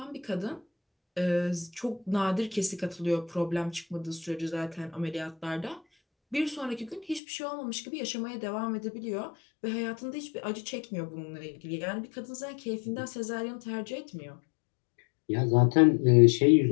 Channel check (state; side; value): drops out; right; at 7.2 s